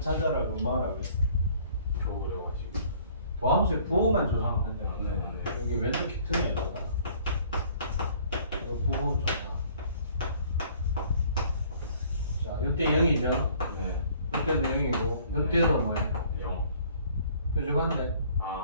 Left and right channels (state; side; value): inverted; both; correlation -0.56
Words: 찾아라고 뭐라고 했어? 겨우 그래가지고. 도함수의 부호만 조사하면 된다. 네. 여기 왼쪽 키트네 이거. 이거 부호 조사. 자 이때 0이죠. 네. 이때도 0이고 이때도 뭐예요? 0. 뾰족한데.